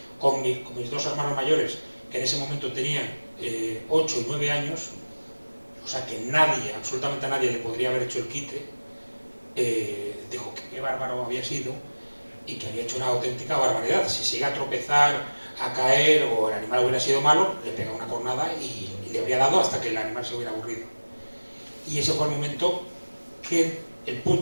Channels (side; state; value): both; inverted; correlation -1.00